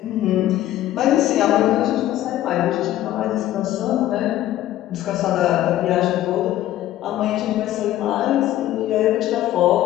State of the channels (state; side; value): quieter; right; 13.7 dB